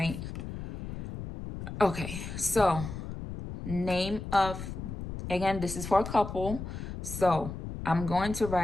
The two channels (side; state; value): left; noise; rumble, 8 dB below the sound